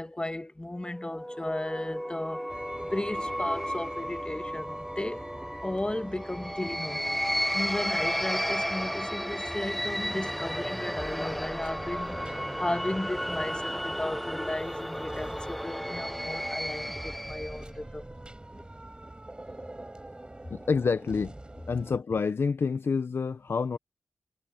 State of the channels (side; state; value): both; normal; correlation 0.96